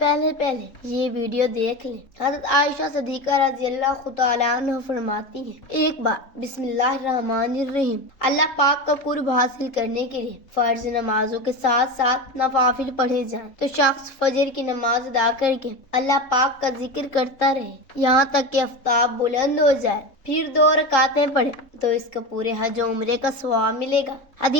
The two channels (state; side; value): late; right; 3.6 ms